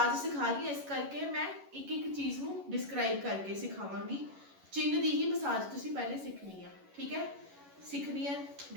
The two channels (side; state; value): left; late; 11 ms